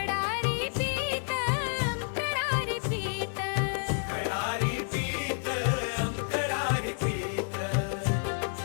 पीठ अंतरारी पीठ. खडारी पीठ अंतरारी पीठ.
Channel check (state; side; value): silent; right; 58 dB below the other